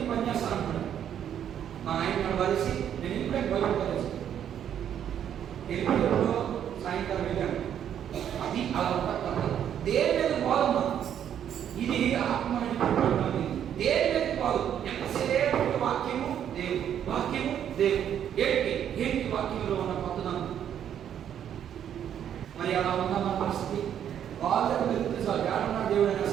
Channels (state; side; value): quieter; left; 9.5 dB